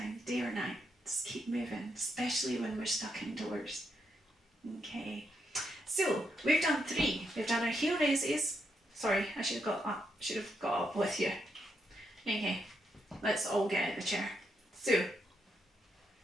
day or night, just keep moving, especially when we're stuck indoors. Okay, so we've done 3. We've done our heel raises. Sorry, I should have got up with you. Okay, let's all get out of the chair. So,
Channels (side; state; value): both; normal; correlation 0.80